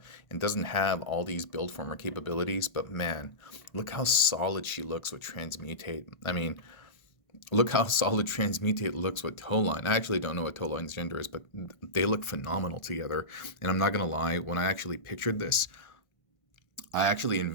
and doesn't have all these build former capabilities. But man, look how solid she looks with Transmutate. I mean, look how solid Transmutate looks with Towline. I actually don't know what Towline's gender is, but they look phenomenal together. And I'm not going to lie, when I actually pictured this, I actually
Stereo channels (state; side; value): late; right; 1.5 ms